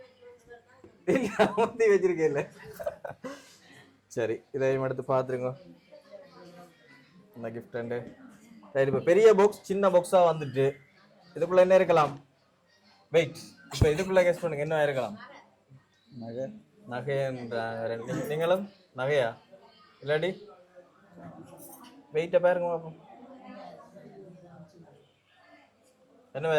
இல்லை ஊற்றி வச்சிருக்கேன் இல்லை. சரி, இதையும் எடுத்து பார்த்துருங்க. இந்த கிஃப்ட் ரெண்டு. சரி, இப்போ பெரிய பாக்ஸ் சின்ன பாக்ஸாக வந்துட்டு இதுக்குள்ளே என்ன இருக்கலாம்? வெயிட், இப்போ இதுக்குள்ளே கெஸ் பண்ணுங்க, என்ன இருக்கலாம்? நகைன்றாங்க. நீங்களும் நகையா? இல்லாடி வெயிட்டை பாருங்க பார்ப்போம், என்னவா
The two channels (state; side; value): identical; both; correlation 1.00